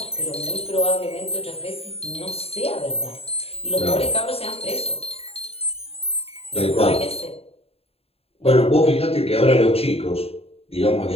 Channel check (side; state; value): right; late; 0.29 ms